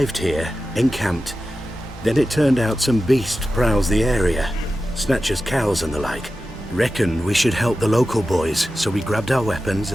here, encamped. Then it turned out some beast prowls the area. Snatchers cows and the like. Reckoned we should help the local boys, so we grabbed our weapons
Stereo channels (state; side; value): normal; both; correlation 0.93